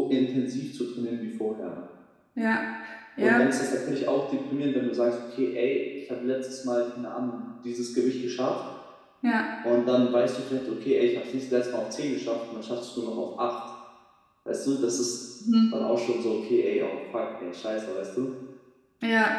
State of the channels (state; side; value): identical; both; correlation 1.00